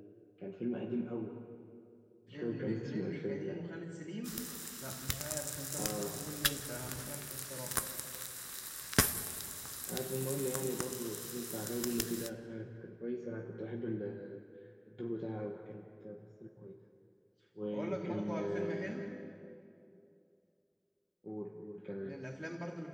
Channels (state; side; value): identical; both; correlation 1.00